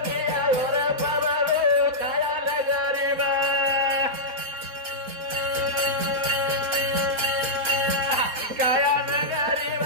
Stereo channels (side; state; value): left; late; 4.2 ms